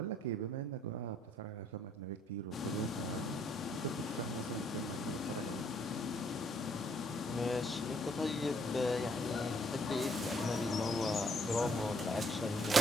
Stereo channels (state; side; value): normal; both; correlation 0.66